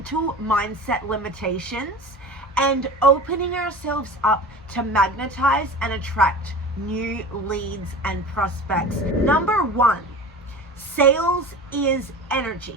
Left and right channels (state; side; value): normal; both; correlation 0.35